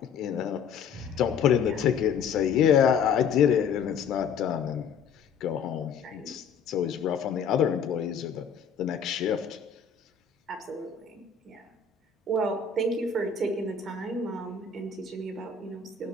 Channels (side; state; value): right; quieter; 6.4 dB